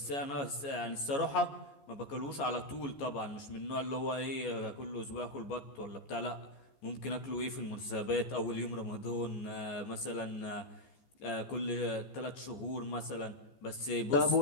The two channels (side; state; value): right; late; 14 ms